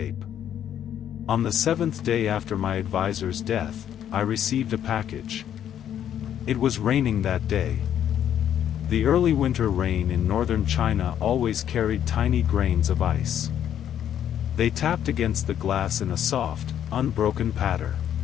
On the 7th day after my advisor's death, I received a package. It was raining that day. The early winter rain in northern China always carried tiny grains of ice. They tapped against the glass in a soft, unbroken patter.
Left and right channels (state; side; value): quieter; right; 10.0 dB